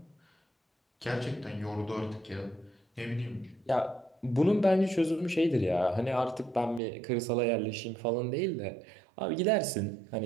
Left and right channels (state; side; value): drops out; left; at 6.8 s